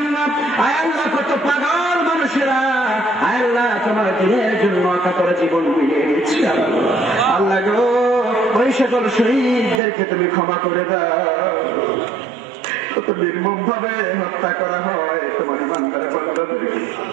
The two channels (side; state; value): left; drops out; at 9.8 s